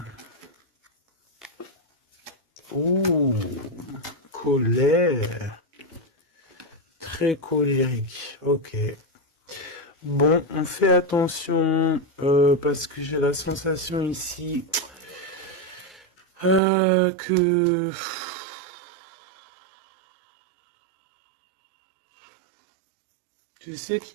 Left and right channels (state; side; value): drops out; left; at 16.6 s